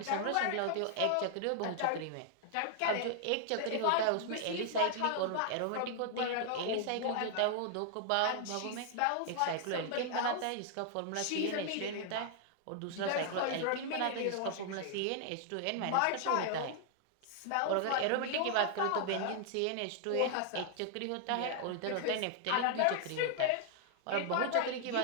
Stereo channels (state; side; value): different; both; correlation 0.00